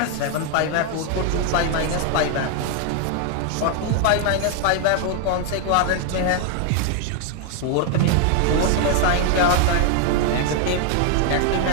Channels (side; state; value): both; different; correlation 0.00